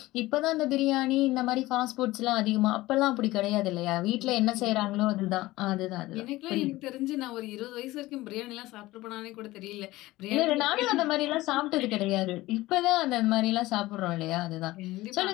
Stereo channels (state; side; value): quieter; right; 18.3 dB